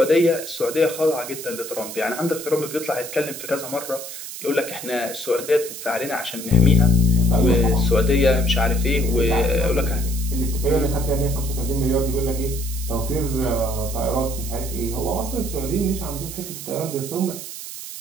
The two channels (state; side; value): noise; right; hiss, 10 dB below the sound